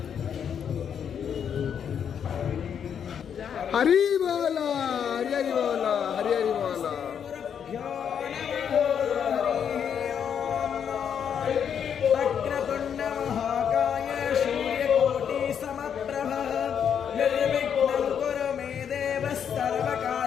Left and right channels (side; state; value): right; quieter; 8.0 dB